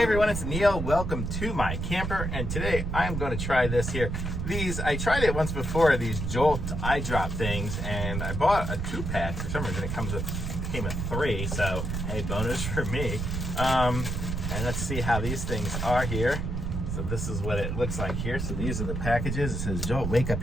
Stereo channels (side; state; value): right; noise; rumble, 2 dB below the sound